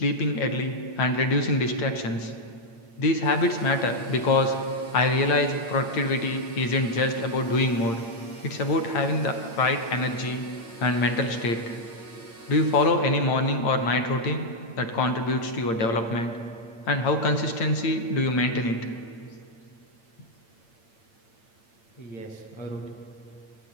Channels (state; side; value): late; right; 8.8 ms